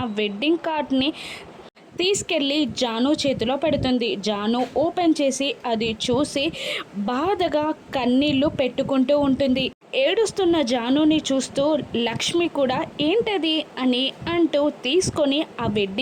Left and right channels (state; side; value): identical; both; correlation 1.00